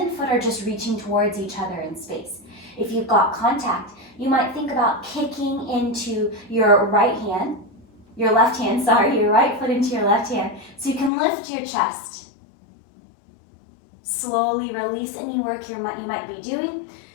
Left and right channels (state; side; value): drops out; right; at 11.1 s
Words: foot are just reaching towards each other in space. If you've got contact, you might think about kicking into your right hand, your right foot into your left hand, so you can lift your chest. Slowly release any work you might be doing.